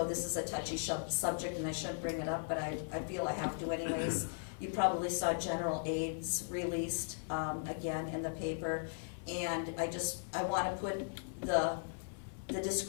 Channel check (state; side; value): silent; right; 53 dB below the other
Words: this is a touchy subject and I shouldn't bring it up, but I feel I have to anyways. You probably saw general aids released again in the paper, and I want to put the